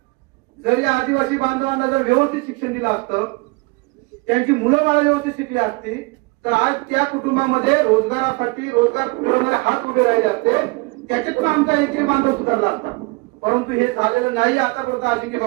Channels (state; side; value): quieter; left; 26.5 dB